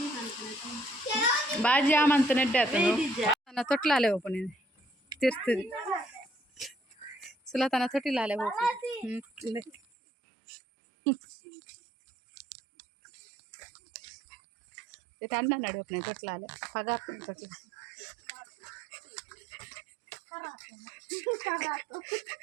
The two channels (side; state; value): left; drops out; at 9.8 s